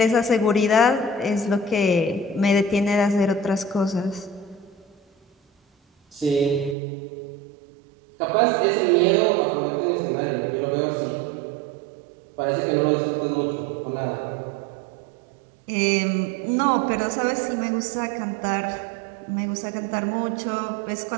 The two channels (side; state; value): left; drops out; at 6.8 s